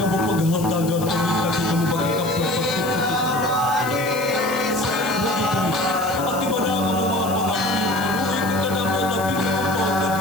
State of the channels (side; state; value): left; noise; hiss, 13 dB below the sound